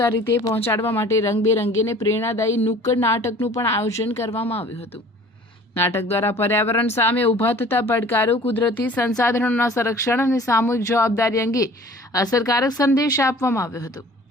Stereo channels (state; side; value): normal; both; correlation 0.48